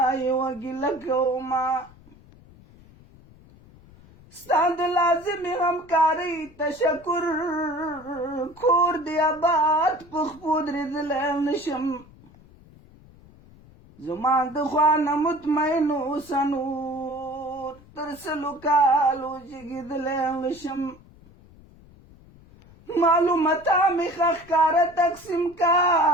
یوه ګیله کومه ستا د لازمې همکارۍ تشکر کور دې آباد په خپو درېدلی نشم زما د خوا نه مطمئن اوسه نور تر سلو کالو جګېدلی نشم معلوماته مې ښه ښکاره تقسیم کا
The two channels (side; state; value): left; noise; rumble, 24 dB below the sound